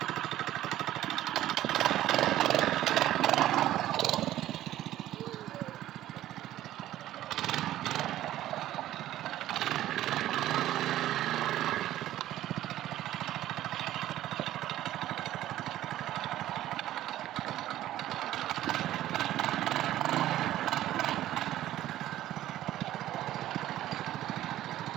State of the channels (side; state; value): left; quieter; 13.6 dB